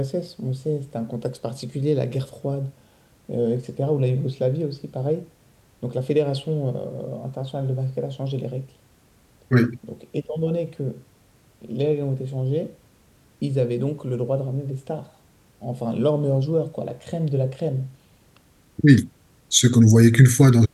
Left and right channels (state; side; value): identical; both; correlation 1.00